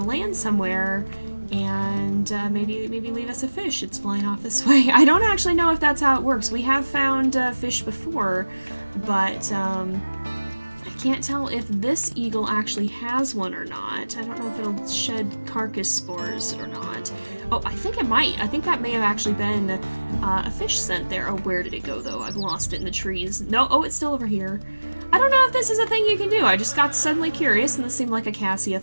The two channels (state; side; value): inverted; both; correlation -1.00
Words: land somewhere and maybe leave us a fish. It's flying off this way. I don't actually know if that's how it works. We have found fish before, but can't tell if this eagle actually has one or not. I don't know if it'll shed carcass spores or not. Oh, I think it might. I think that may have actually been a fish scent there. Oh, where did it go, though? I've lost it in the trees. No, oh, it's still over here. I don't know if this is a thing you can do. I just got suddenly curious, and this seemed like a Cassia